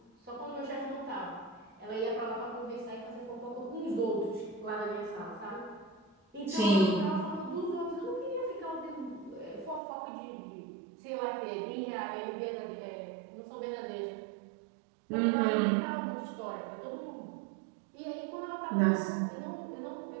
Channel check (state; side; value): drops out; left; at 9.8 s